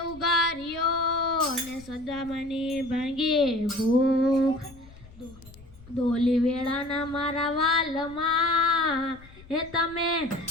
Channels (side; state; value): left; noise; rumble, 22 dB below the sound